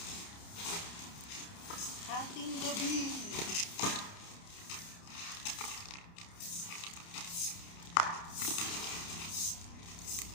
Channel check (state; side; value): late; right; 29 ms